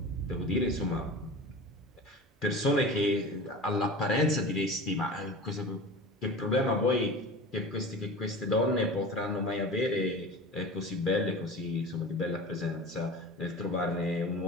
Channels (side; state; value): both; normal; correlation 0.34